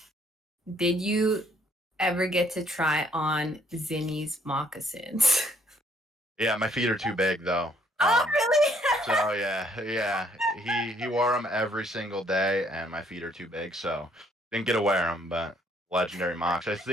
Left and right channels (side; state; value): both; normal; correlation 0.65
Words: did you ever get to try on Zinni's moccasins? Yeah, my feet are too big though. Oh, really? So yeah, yeah, he wore them every single day, and my feet are too big, so didn't get to wear them. But legendary mocks, I